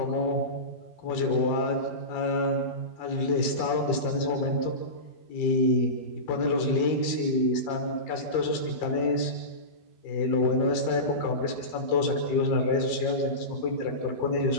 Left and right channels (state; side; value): late; right; 12 ms